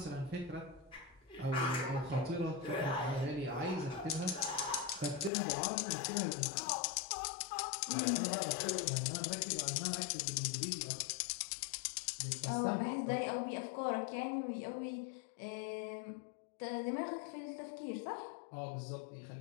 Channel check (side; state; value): right; drops out; at 5.3 s